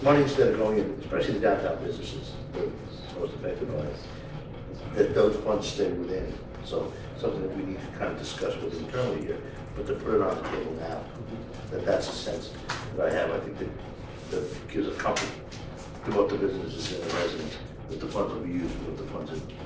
money instead of going in, especially the downtown businesses, that are most affected by it, that those funds stay within. So something that we need to kind of discuss with internally here, but to put it on the table now, that's a sense that I have. I think that gives a comfort to both the businesses and the residents that the funds will be used for what the funds are,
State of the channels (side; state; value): both; identical; correlation 1.00